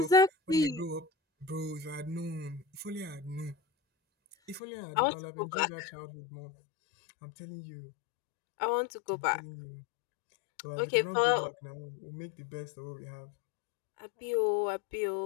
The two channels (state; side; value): drops out; right; at 4.6 s